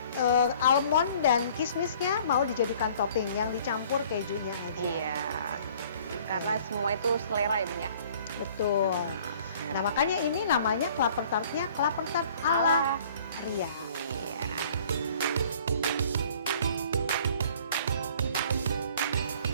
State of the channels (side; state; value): both; inverted; correlation -0.54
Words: almond dan kismisnya mau dijadikan topping, yang dicampur kejunya aja. Iya. Karena semua itu selera ya Bun ya. Betul. Nah makanya ini namanya kelapa tartnya kelapa tart ala Ria. Iya.